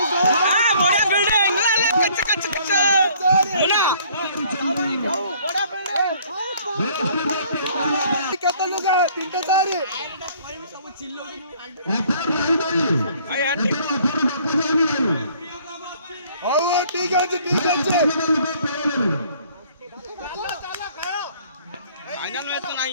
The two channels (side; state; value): both; inverted; correlation -0.58